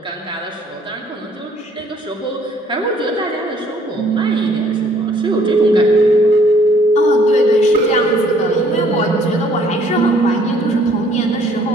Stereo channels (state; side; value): normal; both; correlation 0.61